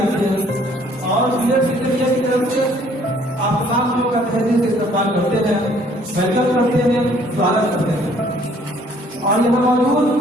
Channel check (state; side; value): normal; both; correlation 0.60